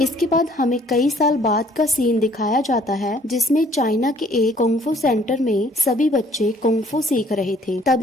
इसके बाद हमें कई साल बाद का सीन दिखाया जाता है जिसमें चाइना के एक कुंग-फू सेंटर में सभी बच्चे कुंग-फू सीख रहे थे।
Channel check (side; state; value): both; normal; correlation 0.60